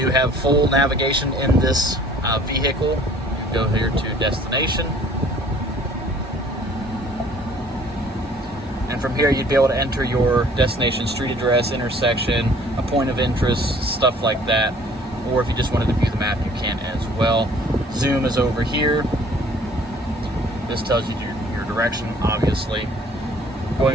have full navigation in this vehicle. You go here to destination. And from here, you'd be able to enter your destination, street address, intersection, a point of interest, stuff like that. Or if you just wanted to view the map, you can as well. Zoom is over here. This tells you your direction, obviously.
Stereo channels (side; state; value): both; normal; correlation 0.55